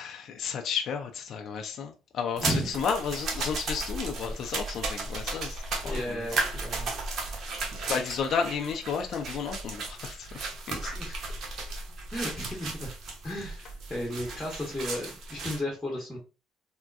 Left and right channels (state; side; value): normal; both; correlation 0.66